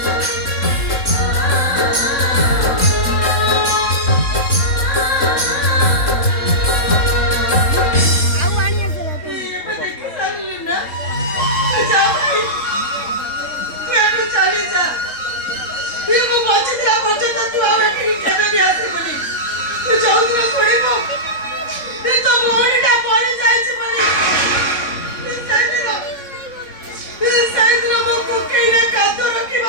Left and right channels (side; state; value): right; late; 3.7 ms